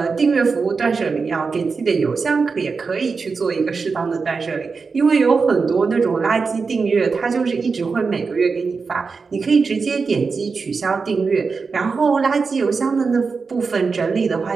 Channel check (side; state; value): left; quieter; 4.8 dB